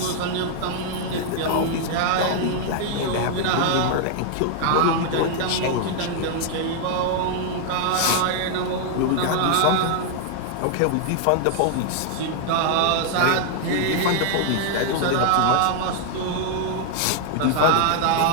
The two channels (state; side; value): different; both; correlation 0.00